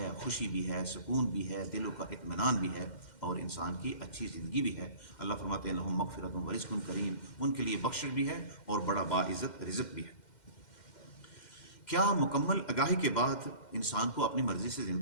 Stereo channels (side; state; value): right; late; 2.1 ms